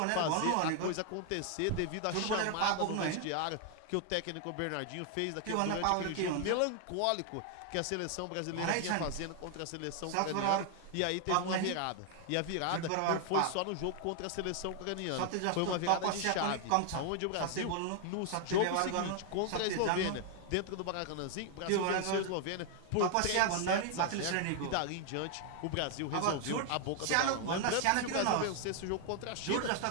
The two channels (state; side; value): different; both; correlation 0.00